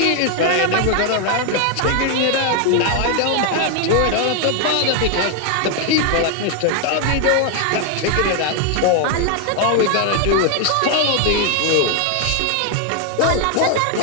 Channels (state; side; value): different; both; correlation 0.00